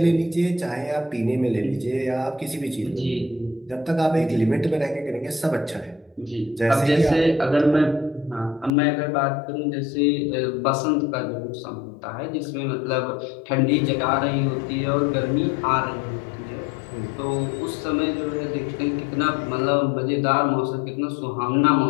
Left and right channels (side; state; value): right; drops out; at 8.7 s